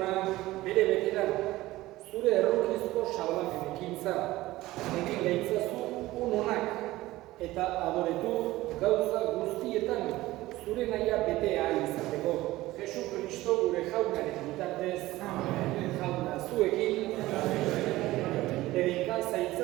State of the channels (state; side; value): quieter; left; 17.5 dB